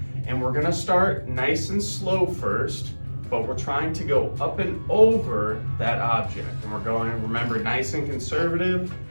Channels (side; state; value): both; inverted; correlation -1.00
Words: and we're gonna start nice and slow first, but we're trying to go up and over that object. And we're going, remember, nice and conservative.